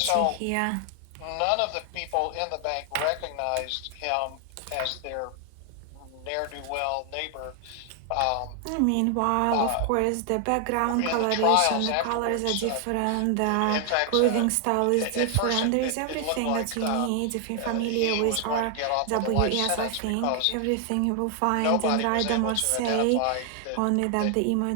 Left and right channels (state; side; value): different; both; correlation 0.00